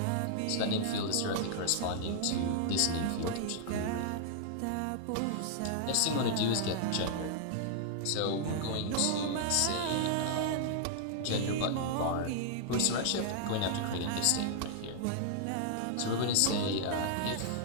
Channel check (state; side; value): different; both; correlation -0.01